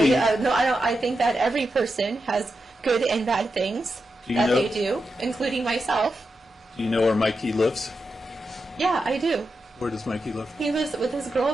No, I don't. I think that every person has good and bad things they do, including myself. do you know where Mikey lives? Yeah, I do. Where does Mikey live? He lives with his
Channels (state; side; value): normal; both; correlation 0.88